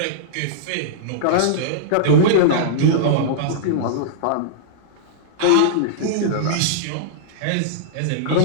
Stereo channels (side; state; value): both; different; correlation -0.02